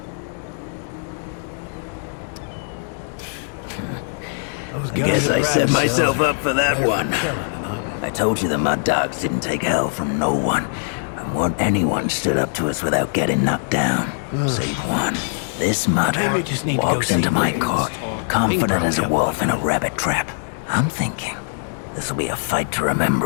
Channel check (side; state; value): right; silent; digital silence